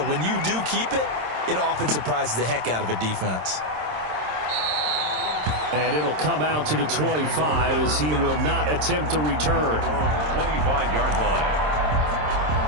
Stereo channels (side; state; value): left; late; 26 ms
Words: when you do keep it, it often surprises the heck out of a defense. And it'll come out to the 25 as he will not attempt to return. 25-yard line.